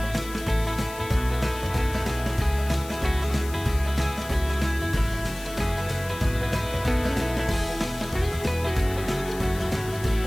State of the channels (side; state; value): left; noise; hiss, 15 dB below the sound